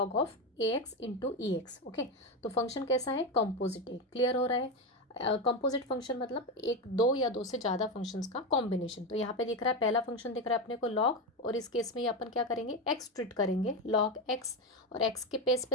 of a x into e x. Okay, तो फंक्शन कैसा है? कॉम्पोजिट है। क्लियर हो रहा है? कंपोजिट फंक्शन मतलब एक दो या दो से ज़्यादा फंक्शंस का कॉम्बिनेशन। तो यहाँ पे दिख रहा है पहला फंक्शन दिख रहा है अपने को लॉग, और इस केस में ये अपन क्या करेंगे? एक्स ट्रीट करेंगे, लॉग एक्स। और एक्स के पेस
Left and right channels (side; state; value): both; normal; correlation 0.14